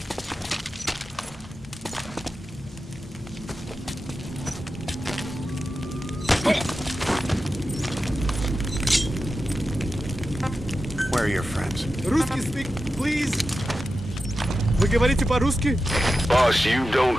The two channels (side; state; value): both; normal; correlation 0.91